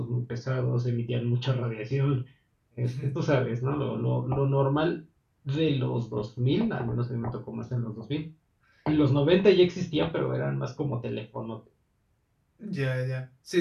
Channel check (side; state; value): both; identical; correlation 1.00